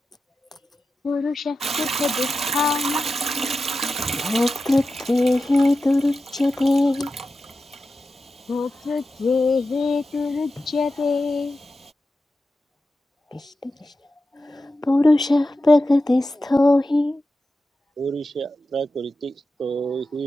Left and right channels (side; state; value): both; normal; correlation 0.92